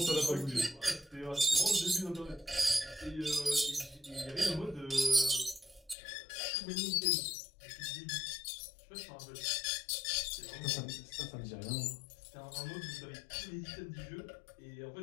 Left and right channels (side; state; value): right; drops out; at 6.0 s